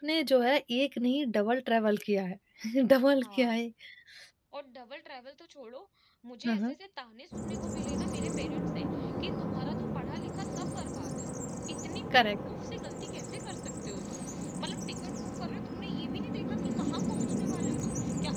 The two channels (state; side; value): identical; both; correlation 1.00